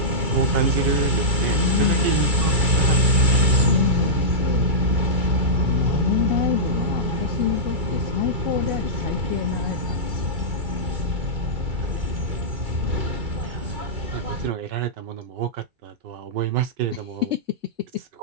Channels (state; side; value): late; left; 2.3 ms